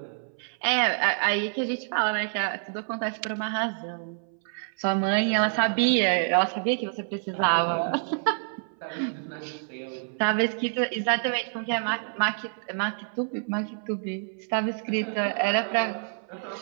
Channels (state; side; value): silent; left; 59 dB below the other